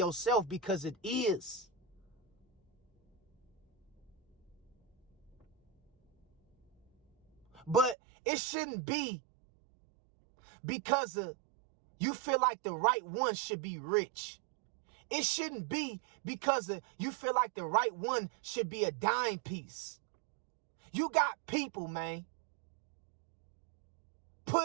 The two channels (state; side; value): drops out; left; at 8.0 s